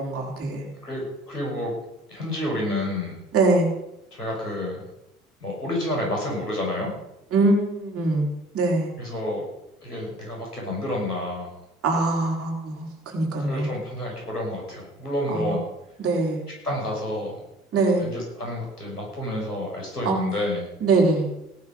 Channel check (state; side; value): normal; both; correlation 0.50